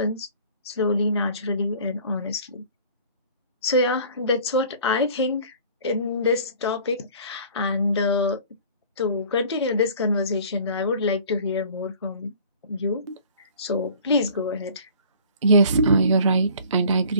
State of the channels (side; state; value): both; inverted; correlation -0.48